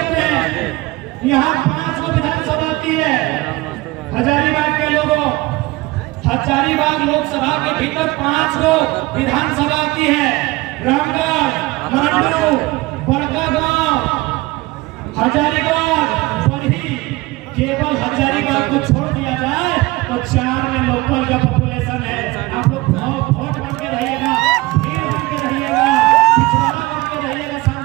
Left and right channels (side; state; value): left; quieter; 20.9 dB